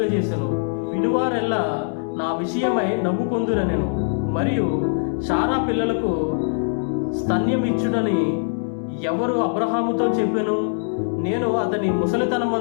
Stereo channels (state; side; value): silent; right; digital silence